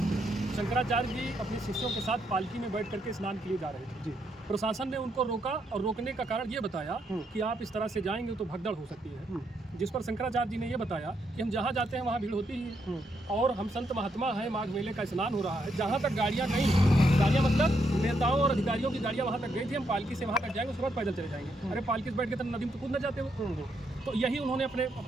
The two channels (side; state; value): both; normal; correlation 0.77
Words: शंकराचार्य जी अपने शिष्यों के साथ पालकी में बैठ करके स्नान के लिए जा रहे थे जी। प्रशासन ने उनको रोका और रोकने का कारण ये बताया कि आप इस तरह से जाएंगे तो भगदड़ हो सकती है। जिस पर शंकराचार्य जी ने ये बताया कि हम जहाँ जाते हैं वहाँ भीड़ होती ही है और हम संत महात्मा हैं, माघ मेले का स्नान हो रहा है, जहाँ तक गाड़ियाँ गई, गाड़ियाँ मतलब नेताओं और अधिकारियों की गाड़ियाँ वहाँ तक गई थी, हम पालकी से वहाँ तक जाएंगे, उसके बाद पैदल चले जाएंगे। अरे पालकी से बैठ के तो नदी में तो कूद न जाते हो। तो यही उन्होंने